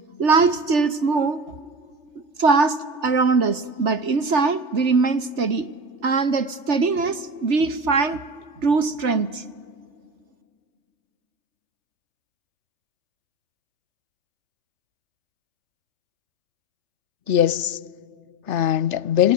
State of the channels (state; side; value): late; left; 3.3 ms